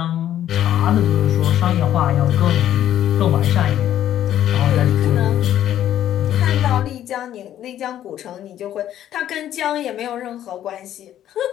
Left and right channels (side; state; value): right; quieter; 11.5 dB